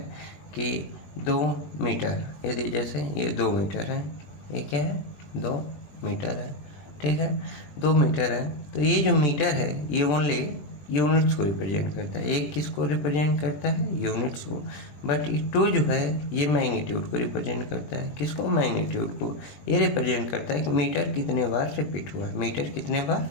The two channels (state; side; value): late; right; 21 ms